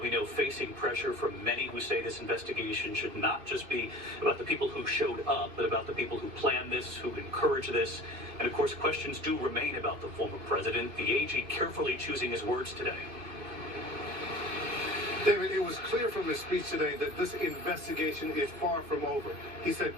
know, facing pressure from many who say this investigation should not just be about the people who showed up, but about the people who planned this, who encouraged this. And of course, questions do remain about the former president. The AG carefully choosing his words today. David, it was clear from his speech today that this investigation is far from over. He said,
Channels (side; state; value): left; late; 2.7 ms